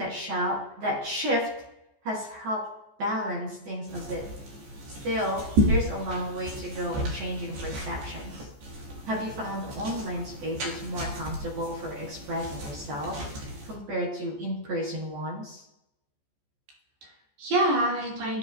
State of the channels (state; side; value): late; left; 14 ms